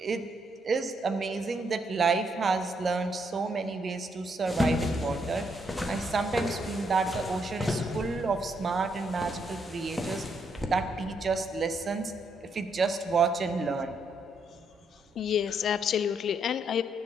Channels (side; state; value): both; normal; correlation 0.75